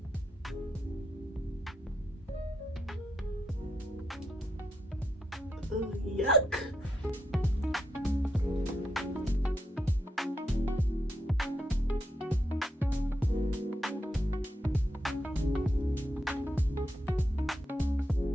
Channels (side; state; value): both; normal; correlation 0.81